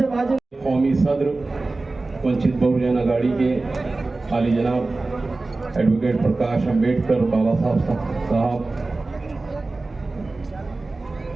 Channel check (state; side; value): quieter; left; 3.3 dB